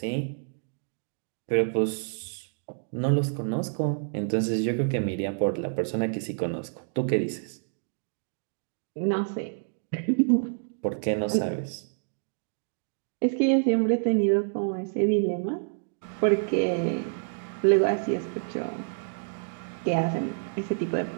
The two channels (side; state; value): left; silent; digital silence